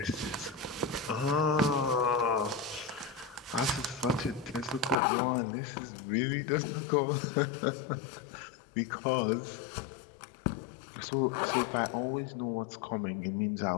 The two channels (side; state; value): right; drops out; at 5.0 s